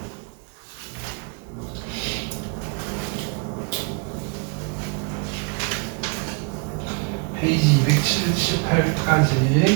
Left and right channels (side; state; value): left; quieter; 35.7 dB